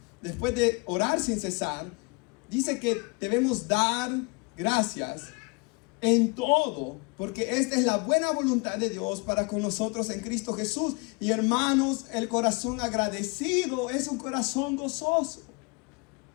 después de orar sin cesar, dice que debemos dar gracias en todo, porque esta es la buena voluntad de Dios para con nosotros en Cristo Jesús. Y hermanos, el corazón agradecido es un corazón gozoso.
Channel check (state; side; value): quieter; right; 30.0 dB